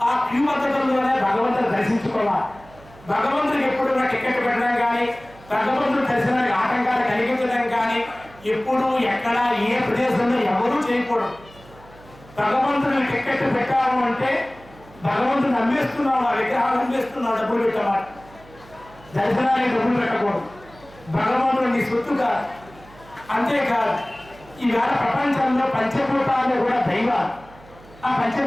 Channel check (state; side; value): noise; right; hum, 23 dB below the sound